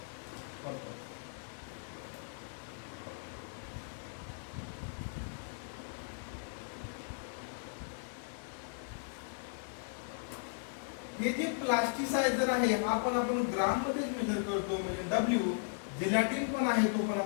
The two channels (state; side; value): silent; right; digital silence